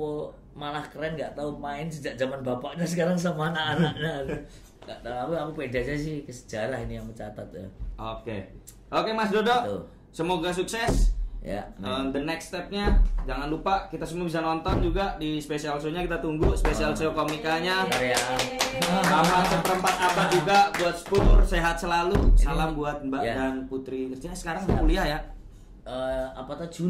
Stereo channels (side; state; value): both; identical; correlation 1.00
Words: malah keren, nggak tahu main sejak zaman bapaknya sekarang sama anak-anaknya. Nggak tahu, aku pede aja sih, ke sejarah ini yang mencatat ya. Oke Mas Dodo, tuh. Semoga sukses ya. The next stepnya jangan lupa kita semua bisa nonton juga di special show-nya, kita tunggu special show komikanya sama seperempat abad juga buat Spur. Sehat selalu, salam buat Mbak dan Putri. Kerjanya sekarang kuliah ya. Apa tuh